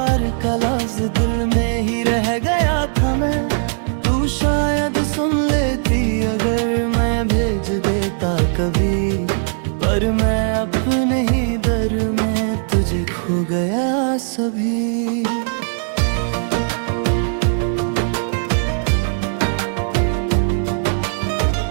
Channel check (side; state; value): left; silent; digital silence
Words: का लफ्ज दिल में ही रह गया था मैं। तू शायद सुन लेती अगर मैं भेज देता कभी, पर मैं अपने ही दर में तुझे खो गया सभी।